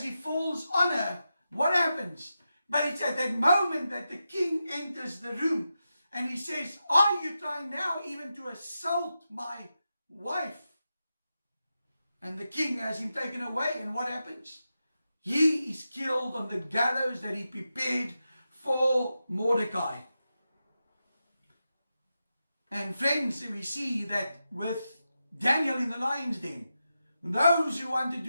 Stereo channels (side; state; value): both; inverted; correlation -0.89